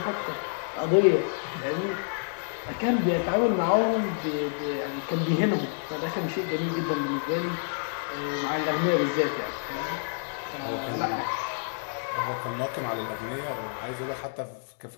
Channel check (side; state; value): right; silent; digital silence